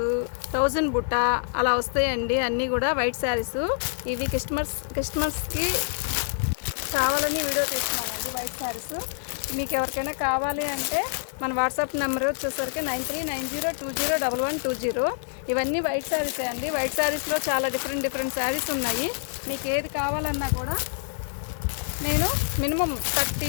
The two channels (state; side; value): silent; right; digital silence